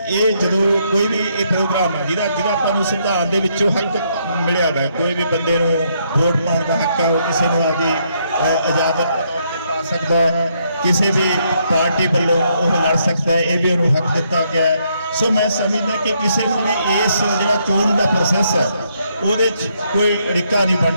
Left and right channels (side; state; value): both; inverted; correlation -0.74